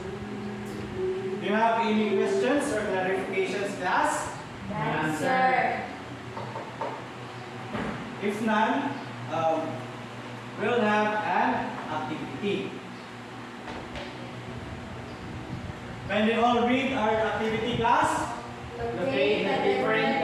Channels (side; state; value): both; identical; correlation 1.00